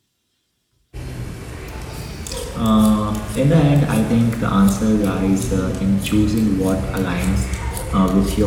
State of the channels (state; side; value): identical; both; correlation 1.00